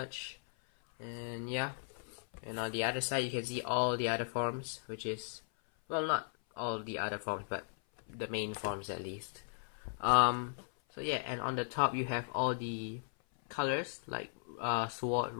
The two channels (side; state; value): right; silent; 53 dB below the other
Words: And yeah, and on the other side you can see all the other forms, which is, well, not all the other forms, but the main forms at least. So yeah, and on the top you have all the colors like sword,